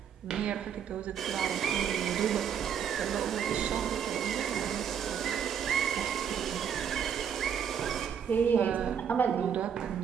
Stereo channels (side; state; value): left; quieter; 8.1 dB